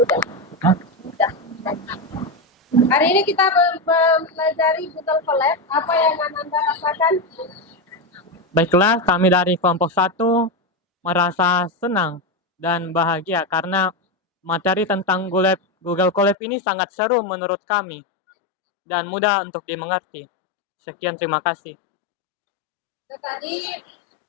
Hari ini kita mempelajari Google Colab. Apa yang Anda rasakan? Baiklah, kami dari kelompok 1 merasa senang dan bahagia karena materi tentang Google Colab ini sangat seru menurut kami dan mudah untuk dimengerti. Sekian, terima kasih. Tadi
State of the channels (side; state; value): right; drops out; at 16.4 s